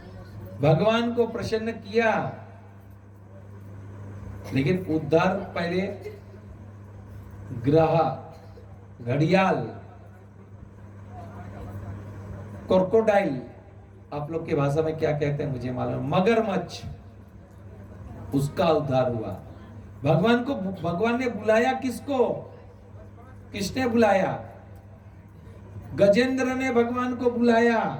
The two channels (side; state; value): both; identical; correlation 1.00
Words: भगवान को प्रसन्न किया, लेकिन उद्धार पहले ग्रह, घड़ियाल, क्रोकोडाइल, आप लोग की भाषा में क्या कहते हैं मुझे मालूम, मगरमच्छ, उसका उद्धार हुआ। भगवान ने बुलाया किसको? किसने बुलाया? गजेंद्र ने भगवान को बुलाया।